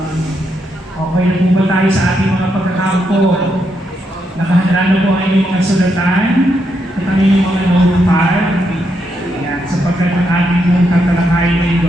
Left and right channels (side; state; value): both; normal; correlation 0.80